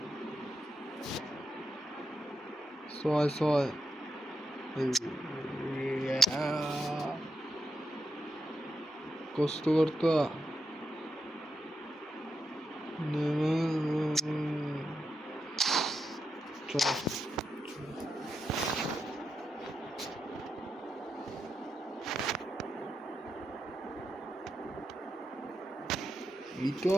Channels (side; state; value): both; normal; correlation 0.86